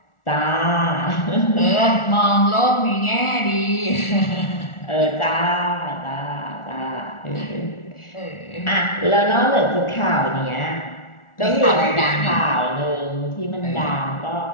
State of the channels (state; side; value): late; right; 1.4 ms